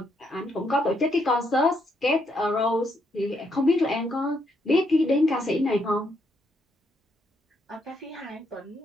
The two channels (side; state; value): both; normal; correlation 0.76